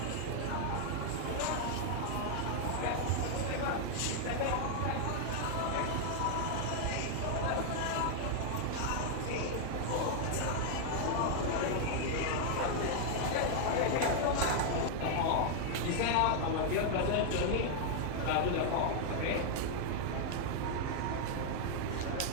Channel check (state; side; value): different; both; correlation 0.00